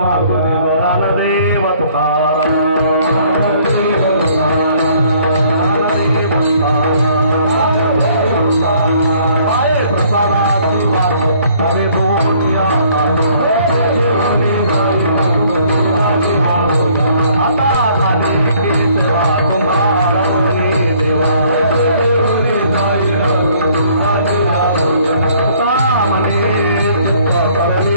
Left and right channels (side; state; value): both; inverted; correlation -0.60